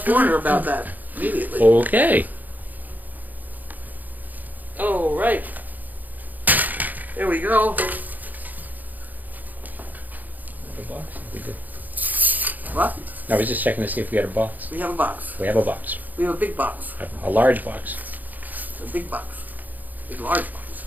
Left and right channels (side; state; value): left; late; 0.083 ms